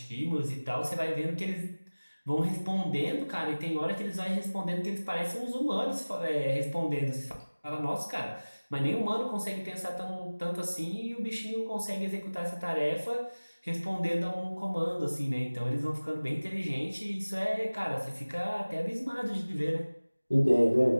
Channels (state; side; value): inverted; both; correlation -1.00